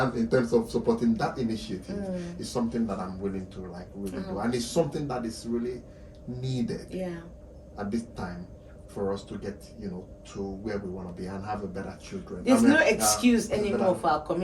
in terms of supporting that initiative, is something that I'm willing to really do. And it's something that is really needed at this time for us to get, to where we want to be and have a better children. There's no excuse anymore for our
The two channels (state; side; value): identical; both; correlation 1.00